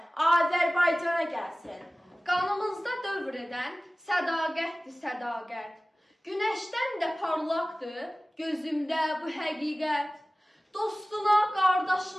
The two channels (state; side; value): normal; both; correlation 0.97